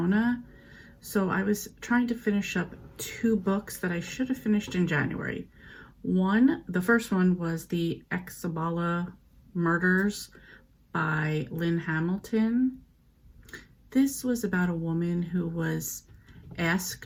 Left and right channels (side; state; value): both; identical; correlation 1.00